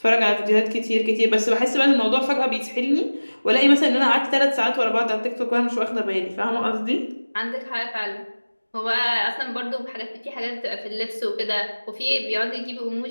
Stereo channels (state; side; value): inverted; both; correlation -1.00